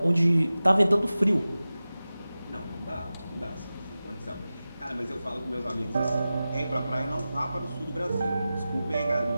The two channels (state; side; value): inverted; both; correlation -0.95